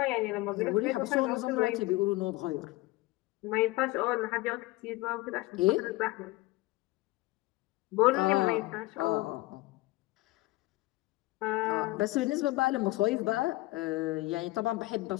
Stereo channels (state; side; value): quieter; right; 20.4 dB